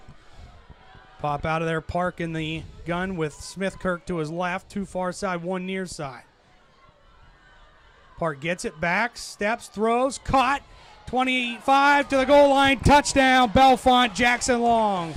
Pop out of there, Park in the gun with Smith-Kirk to his left, 2 far side, 1 near side. Park gets it back, steps, throws, caught. 25 to the goal line, touchdown, Bellefonte, Jackson Long.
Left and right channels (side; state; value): both; identical; correlation 1.00